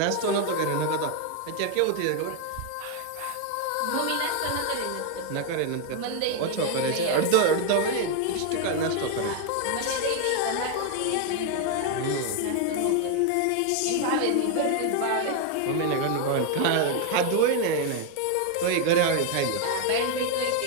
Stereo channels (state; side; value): different; both; correlation 0.01